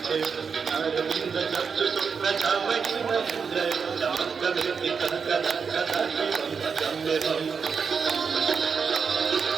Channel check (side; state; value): left; quieter; 5.9 dB